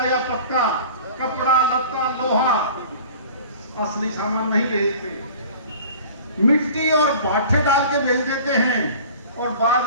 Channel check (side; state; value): both; inverted; correlation -0.43